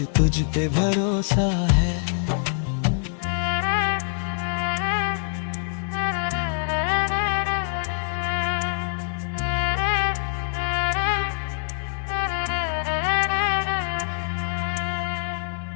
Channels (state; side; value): silent; right; digital silence